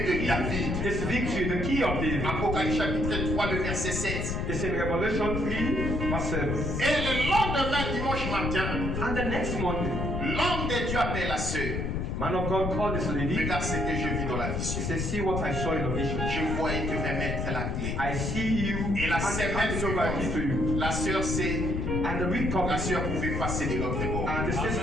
de David. it's victory, the key of David. Apocalypse chapitre 3, le verset 7. It's in Revelation 3, verse 7. Et le lendemain, dimanche matin, And the next morning, l'homme de Dieu appelle la sœur. man of God called this lady. Regarde ce que je vis dans la He vision. said, see what I saw in the vision. Je vois et te remettre la clé. I see you Et la and semaine hand over key to you. suivante, la sœur sait, And the week la comes, sœur pouvait passer de l'autre bord. and the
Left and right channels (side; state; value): left; noise; rumble, 1 dB below the sound